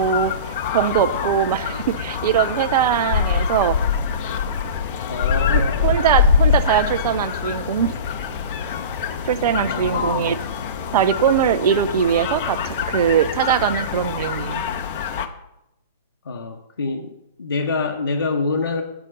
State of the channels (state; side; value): inverted; both; correlation -0.32